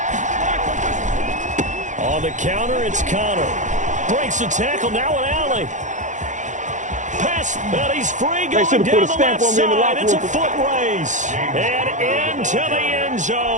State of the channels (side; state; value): left; late; 0.36 ms